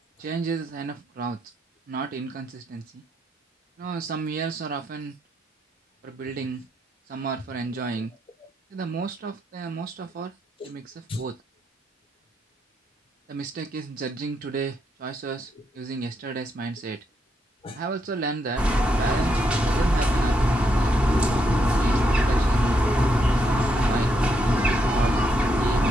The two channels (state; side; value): normal; both; correlation 0.79